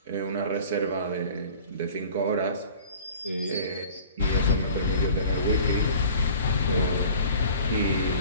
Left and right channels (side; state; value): both; inverted; correlation -0.45